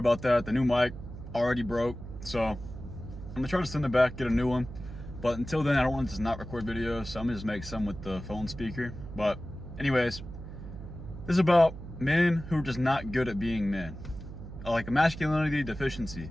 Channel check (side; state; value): right; noise; hum, 11 dB below the sound